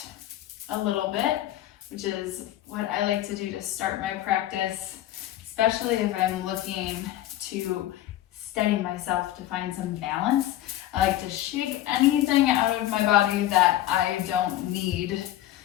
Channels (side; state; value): right; quieter; 13.8 dB